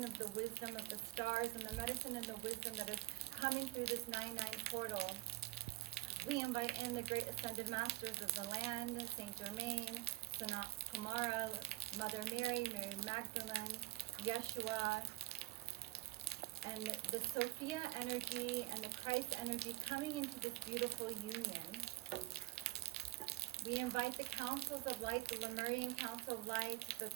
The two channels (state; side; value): quieter; left; 18.9 dB